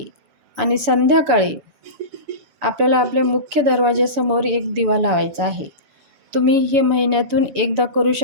आणि संध्याकाळी आपल्याला आपल्या मुख्य दरवाजासमोर एक दिवा लावायचा आहे. तुम्ही हे महिन्यातून एकदा करू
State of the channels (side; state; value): left; late; 6.9 ms